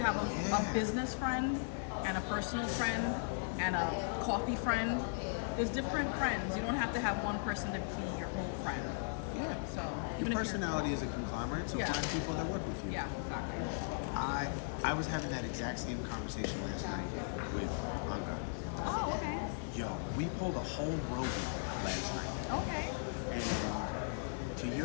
a business friend and a personal friend and a coffee friend, there's different friends. You don't have to have one person to be your whole friend. Yeah. So your personality is a conglomerate, so find people that work with you. Yeah, exactly. I was having that exact same conversation last night with Anga. Oh, okay. Yo, we pulled a whole Rogan last night. Okay. And to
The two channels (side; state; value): right; silent; 53 dB below the other